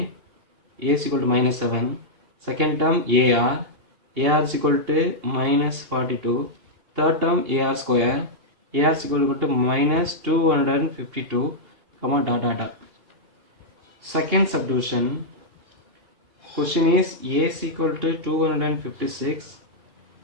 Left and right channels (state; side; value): late; left; 2.8 ms